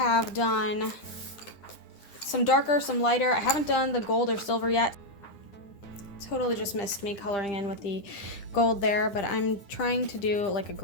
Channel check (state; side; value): late; right; 10 ms